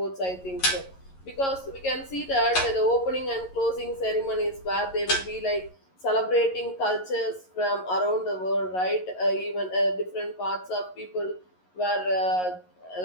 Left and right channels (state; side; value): late; right; 11 ms